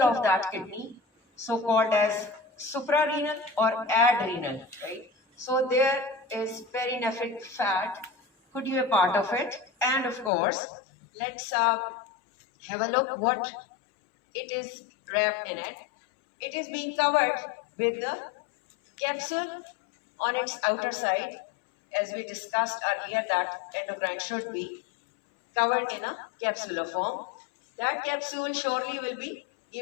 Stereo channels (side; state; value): right; drops out; at 10.3 s